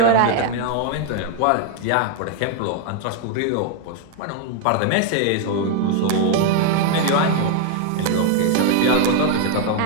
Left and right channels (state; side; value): different; both; correlation 0.00